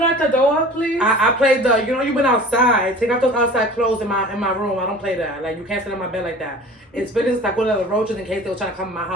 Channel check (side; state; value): both; normal; correlation 0.42